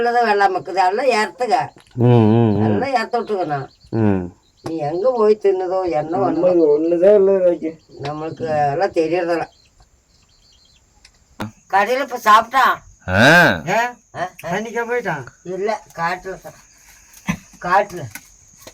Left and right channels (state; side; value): identical; both; correlation 1.00